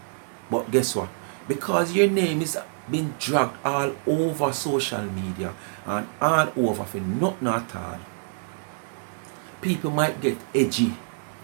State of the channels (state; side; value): silent; left; 61 dB below the other